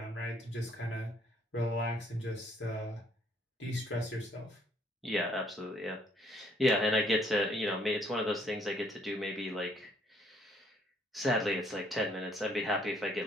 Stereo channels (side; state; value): both; normal; correlation 0.65